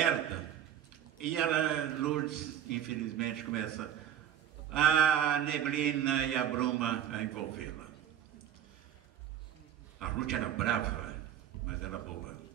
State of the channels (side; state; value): left; quieter; 10.3 dB